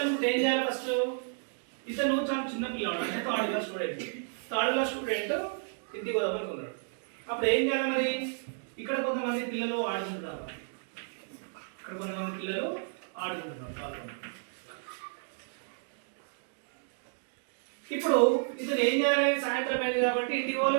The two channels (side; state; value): left; silent; 57 dB below the other